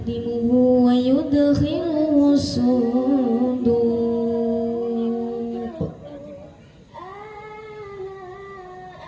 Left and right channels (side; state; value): both; identical; correlation 1.00